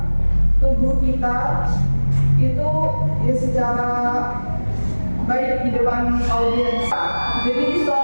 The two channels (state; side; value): inverted; both; correlation -1.00